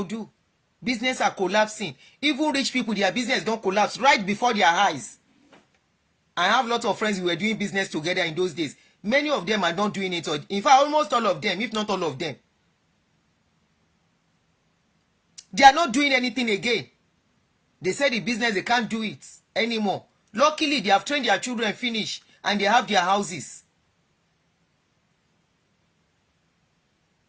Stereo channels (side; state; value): both; identical; correlation 1.00